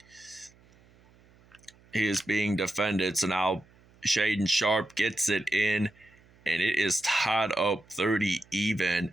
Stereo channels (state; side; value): noise; right; hum, 29 dB below the sound